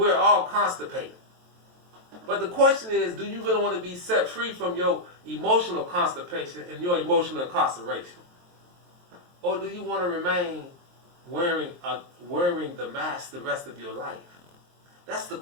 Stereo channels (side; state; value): left; late; 23 ms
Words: all constipated. But the question is, do you really want to be set free from your emotional constipation and your emotional incarceration? Or do you want to remain wearing the mask the rest of your life? That's the